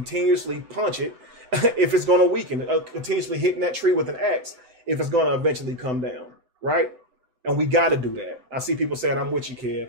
punch it if it's going to weaken, continuously hitting that tree with an axe if it's going to eventually come down, right? And we got to do that. I see people saying, I'm with you,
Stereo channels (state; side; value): late; left; 7.8 ms